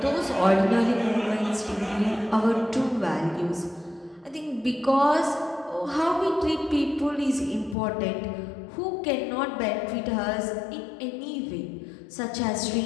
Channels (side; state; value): right; drops out; at 7.8 s